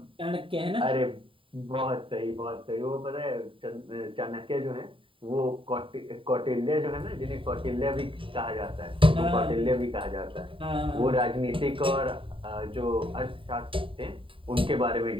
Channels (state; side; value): late; left; 0.25 ms